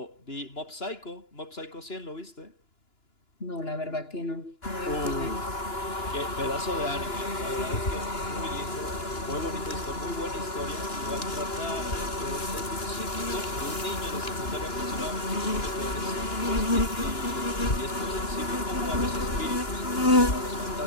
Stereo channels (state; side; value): late; right; 2.9 ms